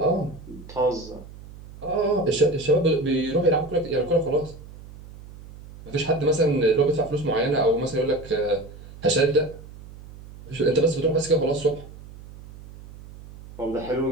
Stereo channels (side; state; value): right; noise; hum, 17 dB below the sound